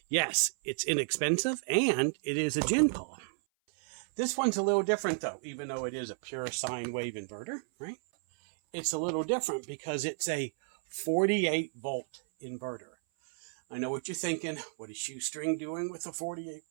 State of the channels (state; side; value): silent; left; 56 dB below the other